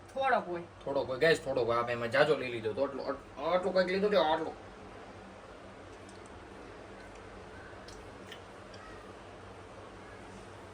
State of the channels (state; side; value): identical; both; correlation 1.00